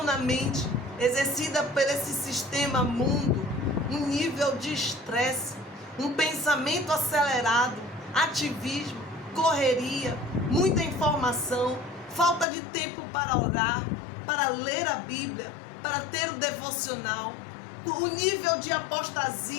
na mente, exercida por esse sistema mundo, um nível de estresse, um pensamento acelerado, ativismo, correria, muita informação, falta de tempo para orar, para ler a Bíblia, para ter o devocional. o nível de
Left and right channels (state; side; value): drops out; right; at 12.5 s